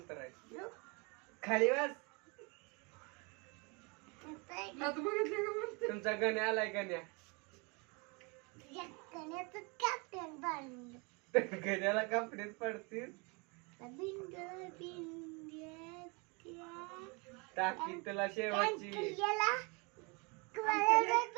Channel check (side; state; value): left; quieter; 30.5 dB